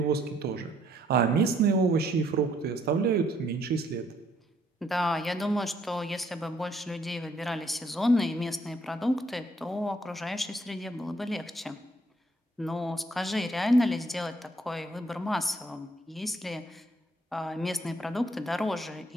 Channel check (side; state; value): both; normal; correlation 0.67